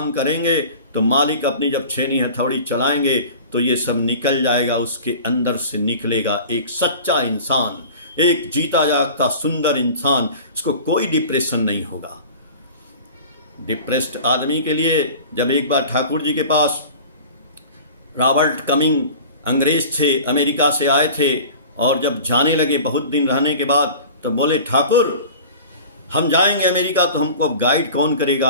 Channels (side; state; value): both; inverted; correlation -0.39